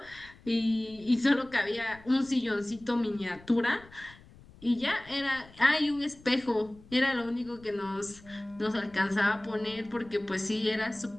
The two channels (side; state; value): left; noise; rumble, 23 dB below the sound